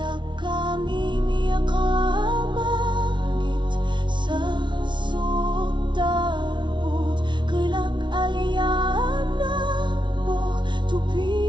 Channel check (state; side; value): late; left; 0.23 ms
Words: kami miyakamagit sa sotarbut, kelak aliana pok,